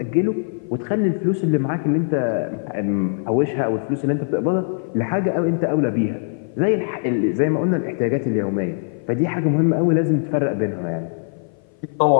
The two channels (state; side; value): silent; right; 57 dB below the other